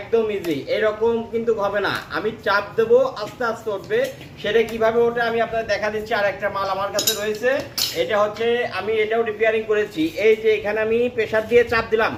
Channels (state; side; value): identical; both; correlation 1.00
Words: ইজি। এরকম কিন্তু হবে না, আমি চাপ দেবো আস্তে আস্তে উঠবে। সেটা কিভাবে ওঠে আমি আপনাদের দেখা দিচ্ছি। আর একটা মাল আমার কাছে রয়েছে, এটা হচ্ছে আমি এটাও রিপেয়ারিং করেছি। এই যে এখানে আমি প্রেসার দিয়ে চাপ দিলাম,